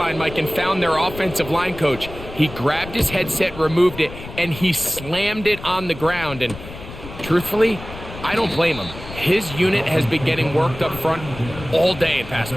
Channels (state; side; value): noise; left; rumble, 13 dB below the sound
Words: Mike, and found their offensive line coach. He grabbed his headset, removed it, and he slammed it on the ground. And truthfully, I don't blame him. His unit has been getting worked up front all day in pass